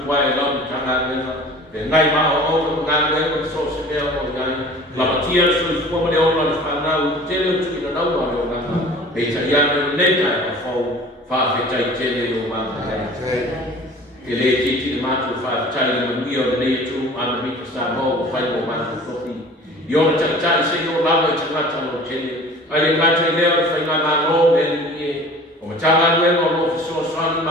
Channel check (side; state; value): both; normal; correlation 0.44